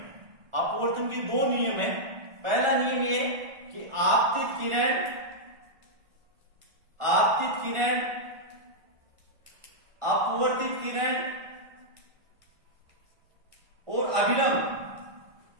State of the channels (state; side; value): late; left; 1.6 ms